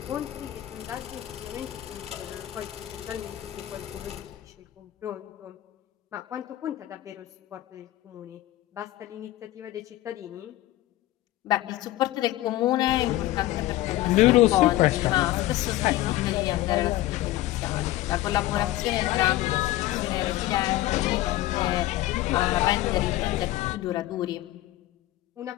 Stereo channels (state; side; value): quieter; right; 15.8 dB